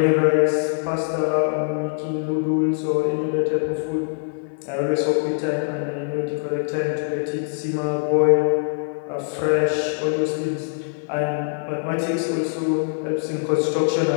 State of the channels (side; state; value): right; silent; 63 dB below the other